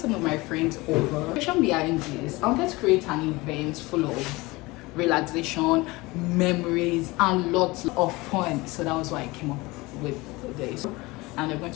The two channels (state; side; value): quieter; right; 22.3 dB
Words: of my friends over. The reason behind this, I wanted to create an event full of relaxation, memories and lots of fun. So that was why I came up with this. And they're going